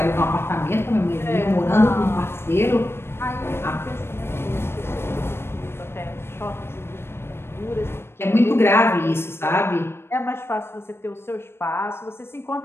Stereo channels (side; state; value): right; late; 0.12 ms